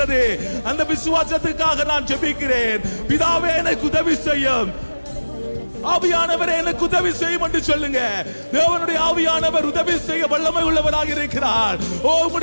அந்த விசுவாசத்துக்காக நான் ஜெபிக்கிறேன். பிதாவே எனக்கு உதவி செய்யும். ஆவியானவரே எனக்கு உதவி செய்யும் என்று சொல்லுங்க. தேவனுடைய ஆவியானவர் உதவி செய்ய வல்லமை உள்ளவராக இருக்கிறார். ஓ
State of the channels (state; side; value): inverted; both; correlation -1.00